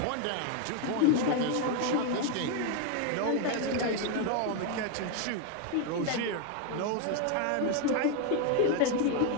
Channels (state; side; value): different; both; correlation 0.01